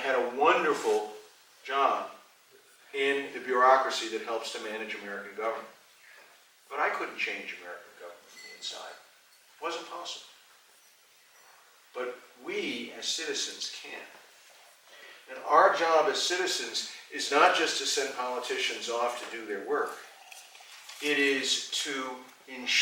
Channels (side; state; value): both; identical; correlation 1.00